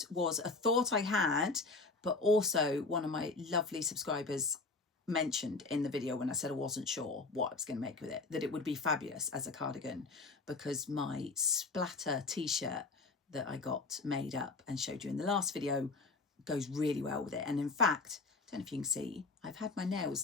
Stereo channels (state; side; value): quieter; right; 3.8 dB